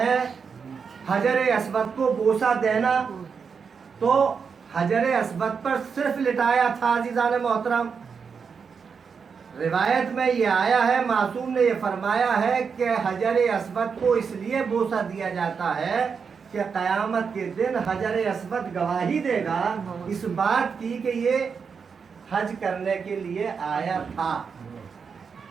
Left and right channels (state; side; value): quieter; left; 5.9 dB